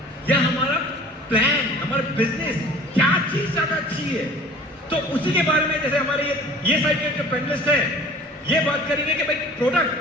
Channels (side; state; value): both; normal; correlation 0.46